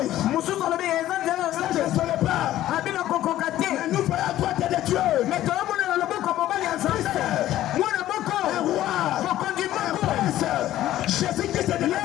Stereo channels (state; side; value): quieter; right; 13.7 dB